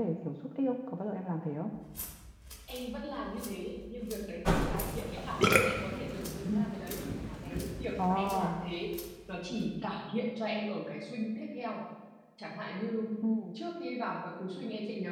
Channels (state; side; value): identical; both; correlation 1.00